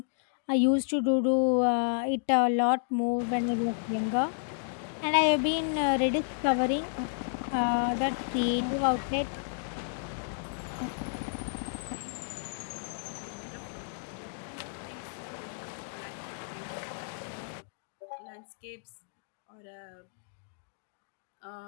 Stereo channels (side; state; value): right; silent; digital silence